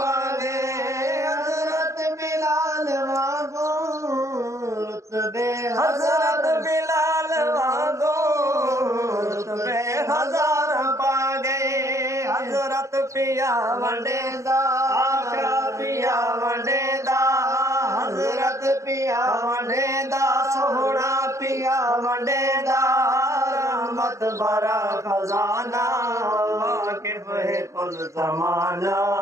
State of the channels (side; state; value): left; late; 0.15 ms